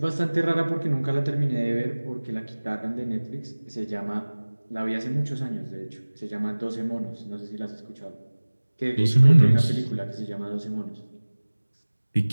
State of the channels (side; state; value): both; inverted; correlation -1.00